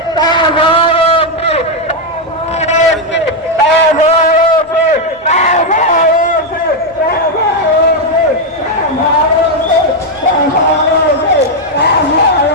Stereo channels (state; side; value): normal; both; correlation 0.02